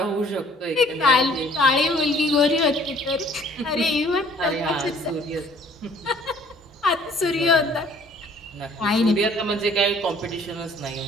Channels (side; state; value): both; normal; correlation 0.56